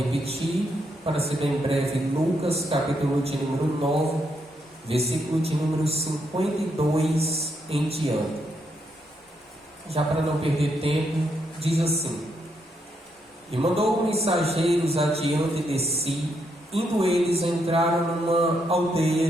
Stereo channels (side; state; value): both; normal; correlation 0.78